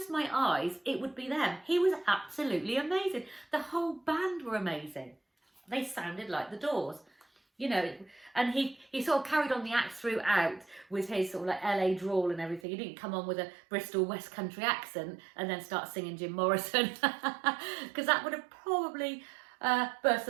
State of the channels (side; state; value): left; drops out; at 12.6 s